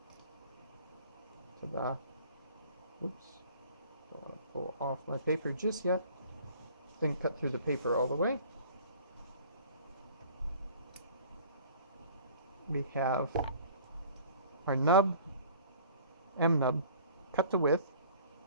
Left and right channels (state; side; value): inverted; both; correlation -0.49